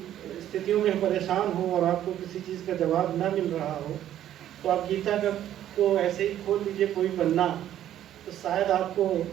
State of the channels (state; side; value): quieter; left; 11.6 dB